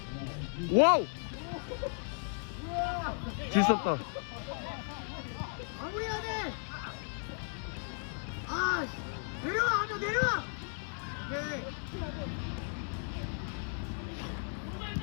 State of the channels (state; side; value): silent; right; 54 dB below the other